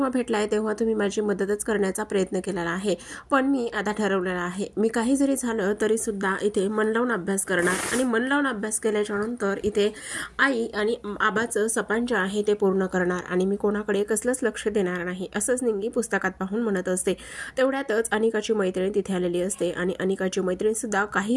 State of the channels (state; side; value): identical; both; correlation 1.00